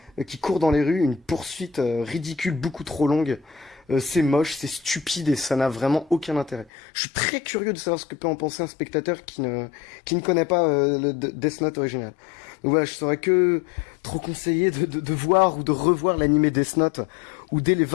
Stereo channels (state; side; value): drops out; right; at 6.7 s